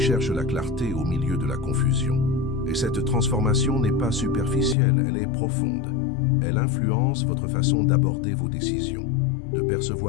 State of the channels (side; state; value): right; drops out; at 4.8 s